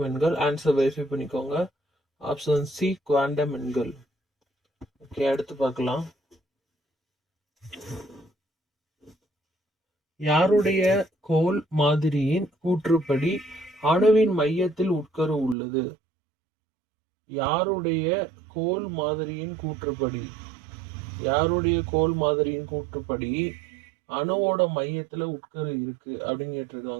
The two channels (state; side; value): drops out; left; at 15.6 s